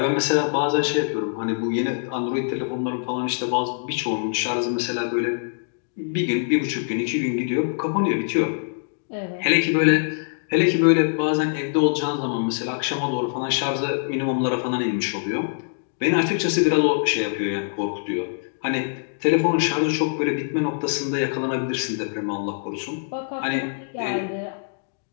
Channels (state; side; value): silent; right; digital silence